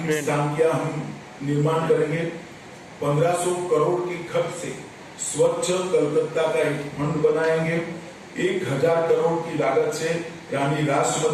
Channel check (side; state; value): both; identical; correlation 1.00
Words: स्थान का हम निर्माण करेंगे। 1500 करोड़ के खर्च से स्वच्छ कलकत्ता का एक फंड बनाएंगे। 1000 करोड़ की लागत से रानी